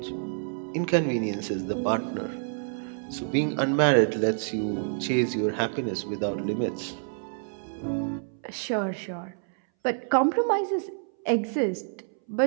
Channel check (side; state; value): left; silent; 60 dB below the other